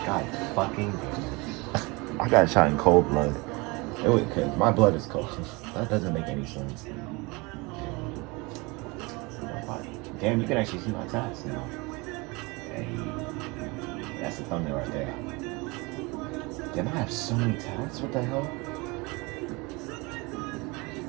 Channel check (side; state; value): left; quieter; 25.9 dB